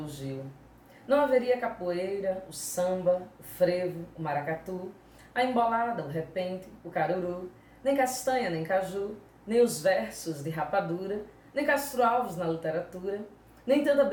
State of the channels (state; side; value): identical; both; correlation 1.00